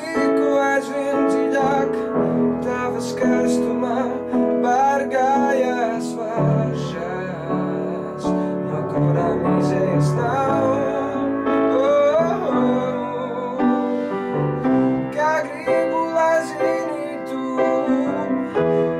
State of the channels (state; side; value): identical; both; correlation 1.00